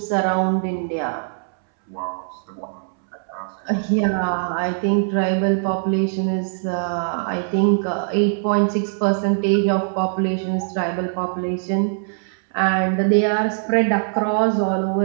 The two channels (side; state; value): left; silent; 65 dB below the other